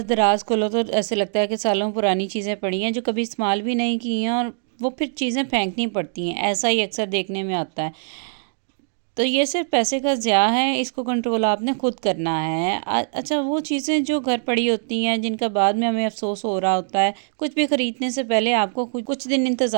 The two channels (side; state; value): left; silent; digital silence